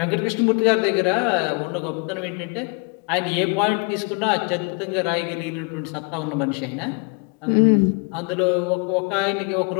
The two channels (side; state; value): right; quieter; 33.7 dB